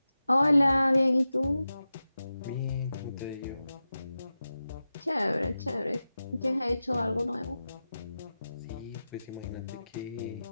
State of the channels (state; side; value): inverted; both; correlation -0.93